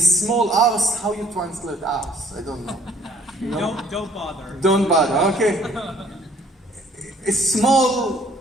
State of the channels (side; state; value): both; normal; correlation 0.60